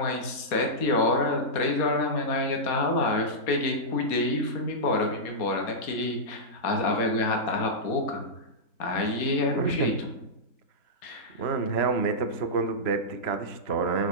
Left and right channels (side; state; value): right; late; 4.2 ms